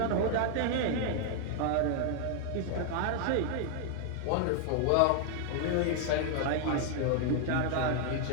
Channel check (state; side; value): different; both; correlation 0.00